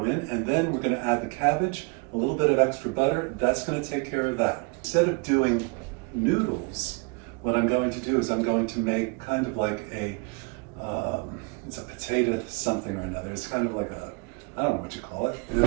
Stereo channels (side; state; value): left; quieter; 31.5 dB